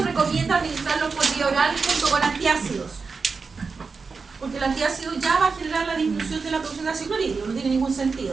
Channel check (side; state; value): left; quieter; 4.8 dB